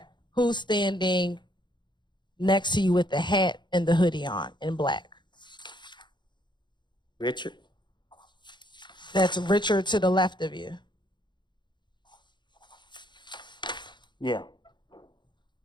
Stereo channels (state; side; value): late; right; 0.22 ms